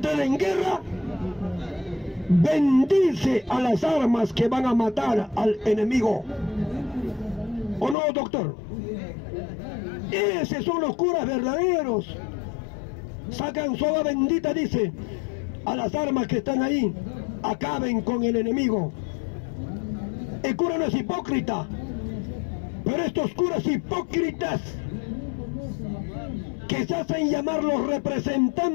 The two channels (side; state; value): right; drops out; at 8.0 s